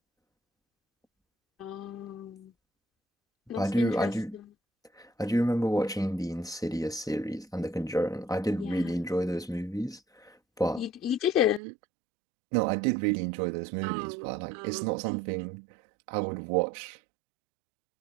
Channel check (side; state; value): left; drops out; at 11.6 s